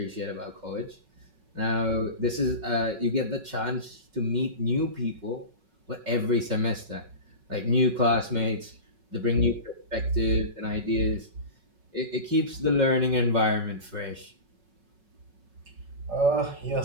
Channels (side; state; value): left; late; 5.4 ms